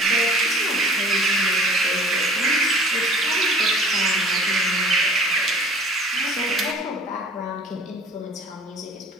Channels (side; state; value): both; normal; correlation 0.47